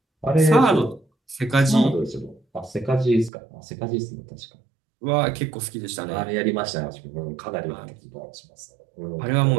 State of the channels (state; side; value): drops out; left; at 3.3 s